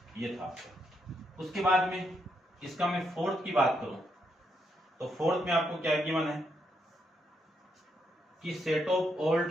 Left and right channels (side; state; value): both; normal; correlation 0.79